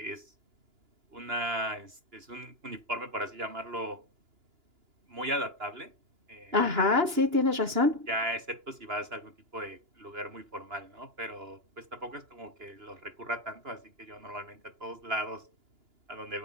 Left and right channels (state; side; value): late; left; 2.9 ms